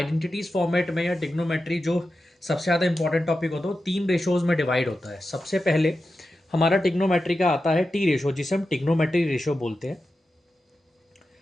फॉर्मेट में, या टिग्नोमेट्री जो सबसे ज़्यादा इंपॉर्टेंट टॉपिक होता है वो तीन रेशोज में डिवाइड होता है। सबसे पहले हमारा टिग्नोमेट्री का आता है टी रेशो, जिसे हम टिग्नोमेट्री रेशो बोलते हैं।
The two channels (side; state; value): both; normal; correlation 0.91